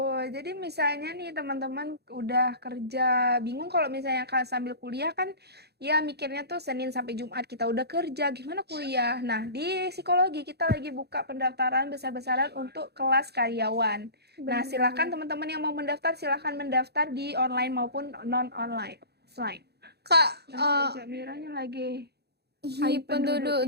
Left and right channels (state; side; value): late; left; 0.48 ms